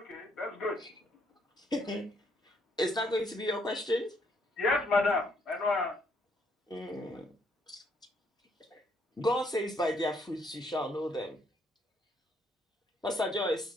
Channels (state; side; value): normal; both; correlation 0.71